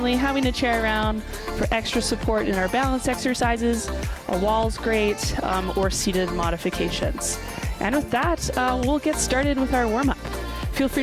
having a chair around for extra support in our balance exercises. A wall's great, or seated modifications. And with that, we'll get started with our warm-up. Feel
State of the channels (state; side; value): identical; both; correlation 1.00